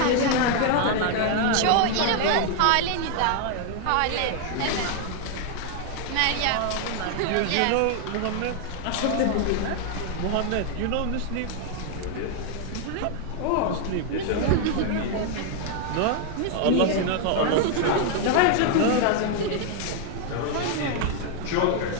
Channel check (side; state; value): both; different; correlation 0.00